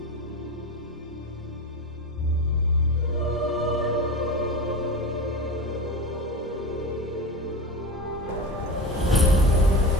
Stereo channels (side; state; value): both; normal; correlation 0.25